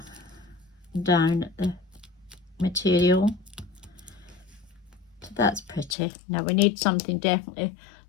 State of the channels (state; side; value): drops out; right; at 6.0 s